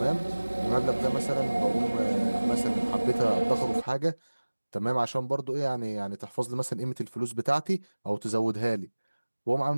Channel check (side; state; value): both; inverted; correlation -1.00